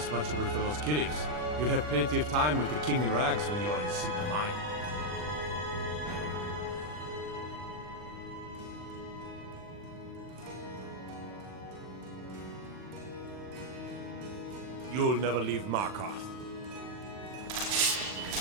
for those killings. You'll have plenty of time with the King in Rags when you're in Cidhna Mine. You'll never leave Markarth.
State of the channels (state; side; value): late; left; 40 ms